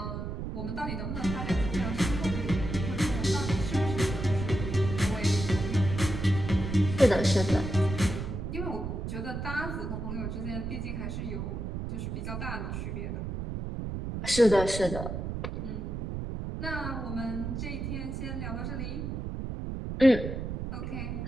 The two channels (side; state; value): right; noise; rumble, 4 dB below the sound